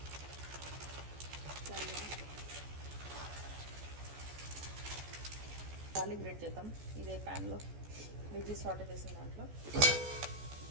గార్లిక్ బ్రెడ్ చేద్దాం. ఇదే ప్యాన్లో వెజ్జెస్ సార్ట్ చేసిన దాంట్లో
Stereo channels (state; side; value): late; left; 14 ms